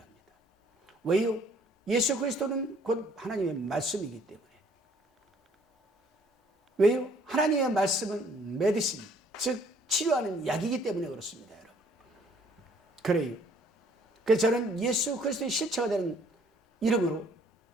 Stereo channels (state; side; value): normal; both; correlation 0.61